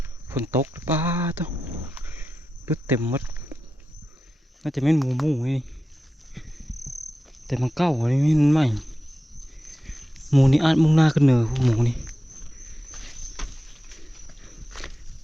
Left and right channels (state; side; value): normal; both; correlation 0.92